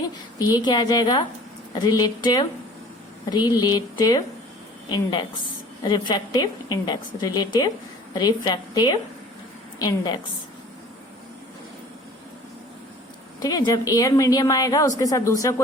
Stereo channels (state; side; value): normal; both; correlation 0.48